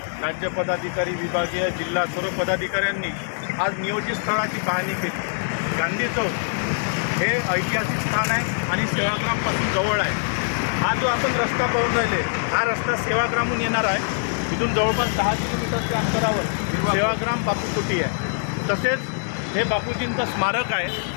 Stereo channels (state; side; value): silent; right; digital silence